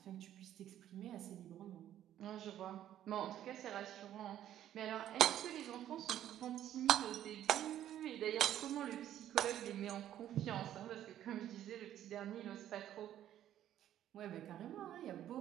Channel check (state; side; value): quieter; left; 11.6 dB